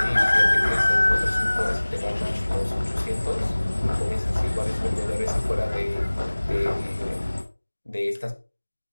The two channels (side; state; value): both; inverted; correlation -1.00